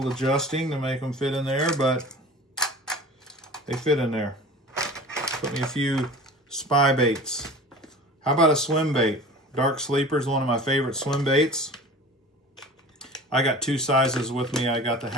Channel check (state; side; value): normal; both; correlation 0.39